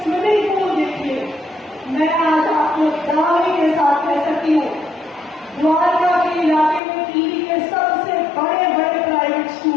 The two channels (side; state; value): right; drops out; at 6.8 s